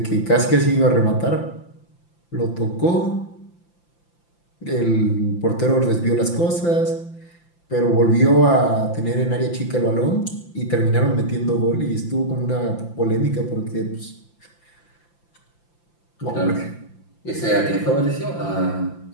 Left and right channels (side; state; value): right; late; 5.9 ms